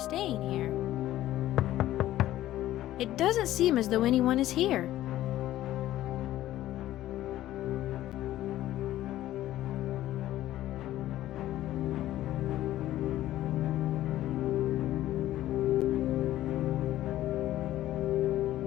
here. It doesn't seem as though anyone is here.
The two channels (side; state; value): right; quieter; 14.2 dB